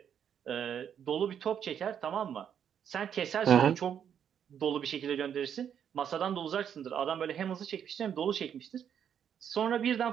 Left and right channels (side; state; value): left; quieter; 8.6 dB